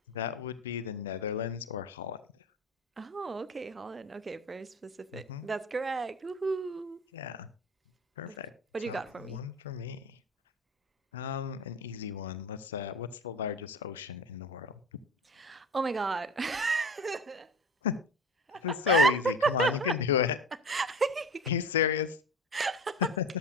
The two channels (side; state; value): both; normal; correlation 0.31